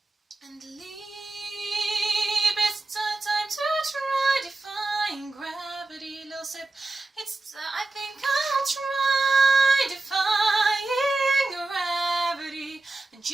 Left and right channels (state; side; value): quieter; left; 3.2 dB